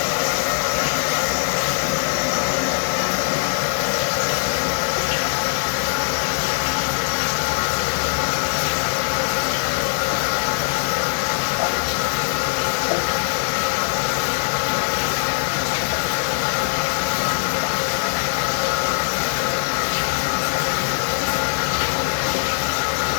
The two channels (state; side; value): silent; right; 65 dB below the other